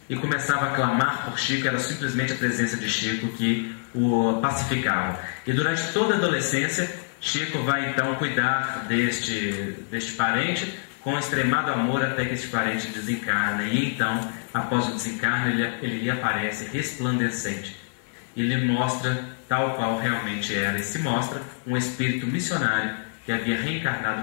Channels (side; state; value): right; silent; 56 dB below the other